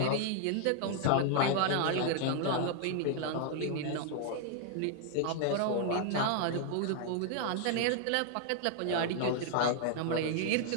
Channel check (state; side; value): different; both; correlation 0.00